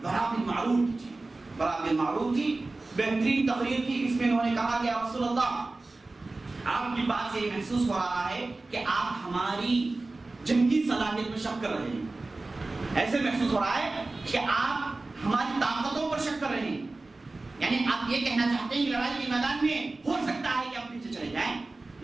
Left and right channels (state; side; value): quieter; left; 3.2 dB